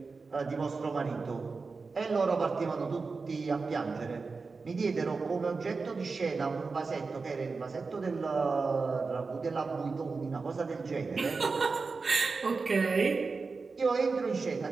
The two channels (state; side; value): quieter; left; 4.4 dB